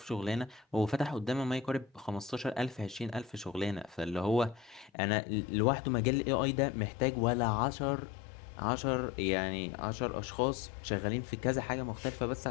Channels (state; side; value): drops out; right; at 4.9 s